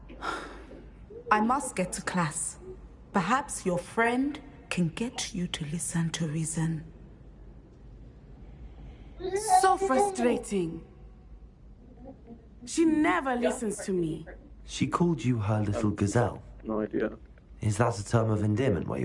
I must get to class. Perhaps your friend can get you to listen to reason. So frustrating. She never listens to me. She called you her little gazelle? No idea. Is that a term of endearment where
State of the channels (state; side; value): identical; both; correlation 1.00